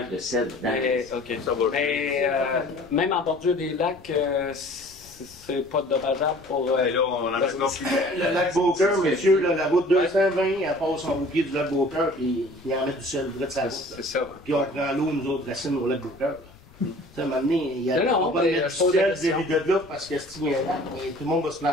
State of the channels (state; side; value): noise; left; rumble, 24 dB below the sound